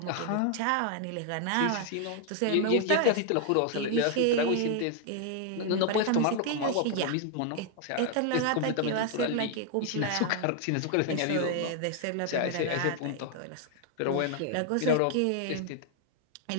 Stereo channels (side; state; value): both; different; correlation 0.00